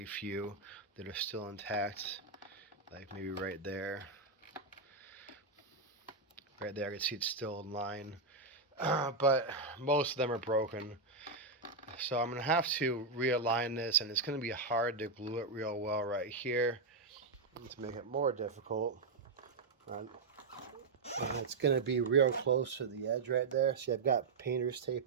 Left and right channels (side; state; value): left; quieter; 3.8 dB